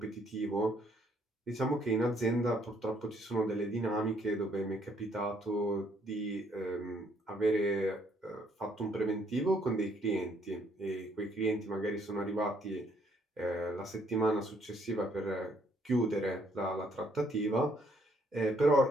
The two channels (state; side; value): normal; both; correlation 0.67